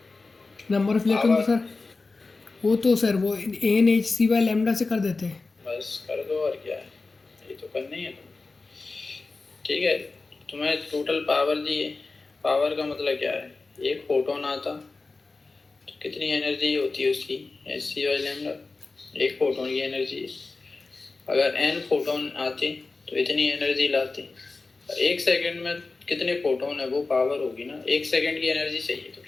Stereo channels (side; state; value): right; quieter; 3.8 dB